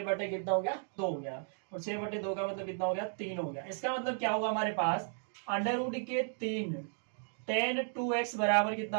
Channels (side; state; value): left; silent; 55 dB below the other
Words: कितना हो गया 2 हो गया, और 6/2 का मतलब कितना हो गया 3 हो गया। इसका मतलब क्या होगा हमारे पास √3 tan 2x बराबर